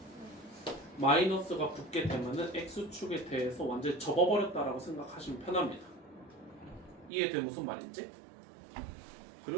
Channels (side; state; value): left; drops out; at 7.1 s